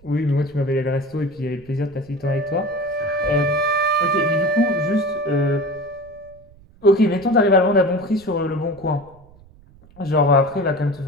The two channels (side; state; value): right; noise; rumble, 26 dB below the sound